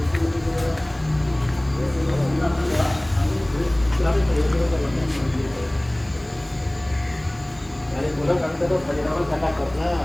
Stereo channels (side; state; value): left; noise; hiss, 30 dB below the sound